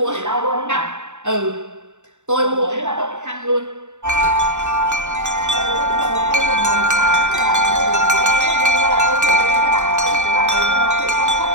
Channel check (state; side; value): late; left; 0.84 ms